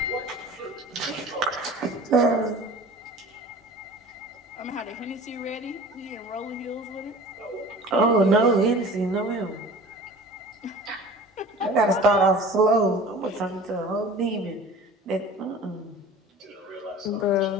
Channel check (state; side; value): normal; both; correlation 0.41